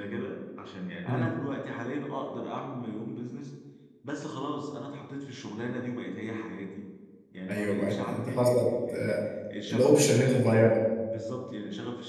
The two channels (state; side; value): identical; both; correlation 1.00